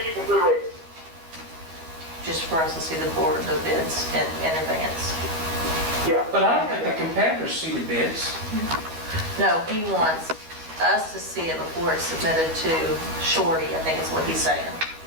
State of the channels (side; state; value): left; late; 12 ms